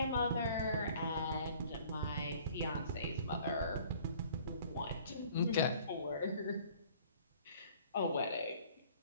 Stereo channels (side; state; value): both; inverted; correlation -0.53